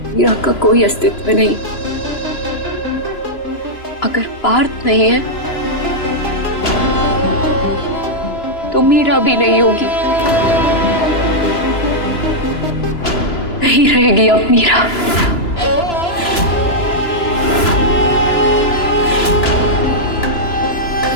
मीरा का कोई अस्तित्व नहीं। अगर पार्थ नहीं है तो मीरा भी नहीं होगी, नहीं रहेगी अब मीरा।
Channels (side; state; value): right; late; 2.9 ms